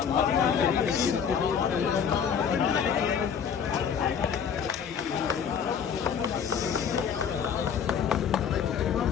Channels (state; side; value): quieter; right; 7.3 dB